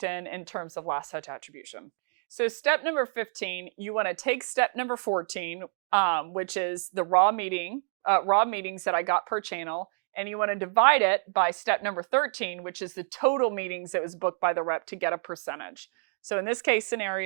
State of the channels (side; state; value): left; silent; 59 dB below the other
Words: in terms of last touch attribution. So step number 15, you want to take step number 14, which is the raw meetings that I got per channel, and you want to divide it by step number 13, which is the total meetings that was booked by the rep to get a percentage. So in this case